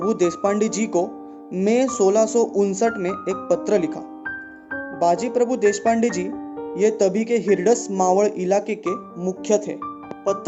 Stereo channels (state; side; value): identical; both; correlation 1.00